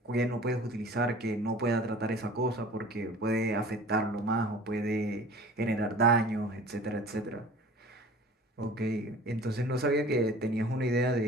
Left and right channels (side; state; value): both; normal; correlation 0.44